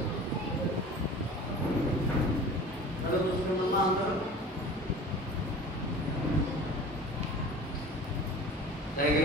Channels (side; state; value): both; normal; correlation 0.40